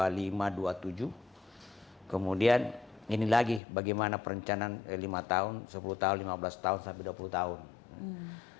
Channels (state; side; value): drops out; right; at 3.6 s